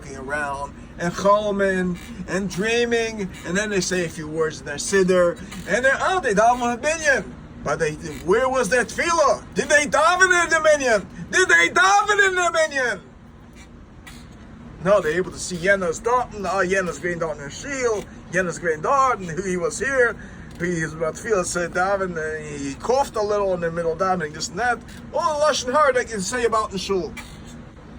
around and choloming and dreaming, and then they say a few words in their siddur, and they daven with a minyan. But where was that tefillah? Did they daven in the minyan? No, they're able to see Yena's Dalton, Yena's Green Dalton and Shield, Yena's Green Dalton, who he was here. He was about to feel said daven, he coughed a little in the middle of davening, this and that. All the lashon hara they can say about the shul.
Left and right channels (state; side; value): identical; both; correlation 1.00